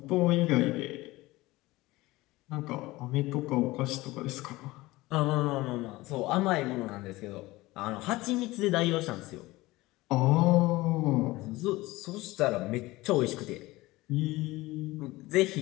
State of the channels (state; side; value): quieter; right; 19.7 dB